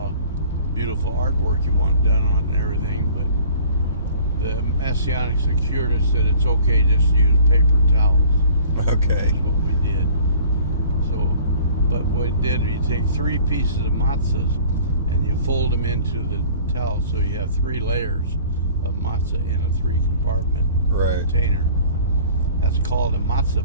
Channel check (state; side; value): inverted; both; correlation -0.50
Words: beautiful artwork you want done on it and everything, but the Messianic Security said it's okay just to use paper towels. Okay. Which is what we did. So, but what we did, you take 3 pieces of matzahs and you fold them into the towel, so you have 3 layers of matzah in a 3-compartment container. That's called a matzah